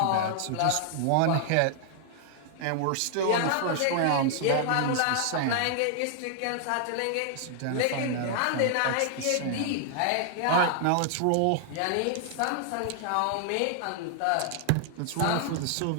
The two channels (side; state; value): both; different; correlation 0.00